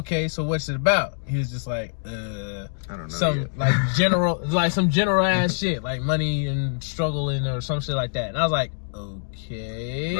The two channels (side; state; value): right; silent; digital silence